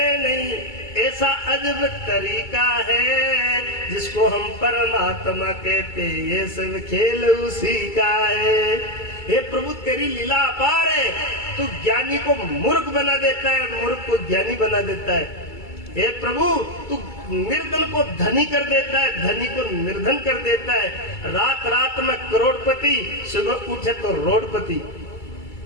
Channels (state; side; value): late; right; 2.3 ms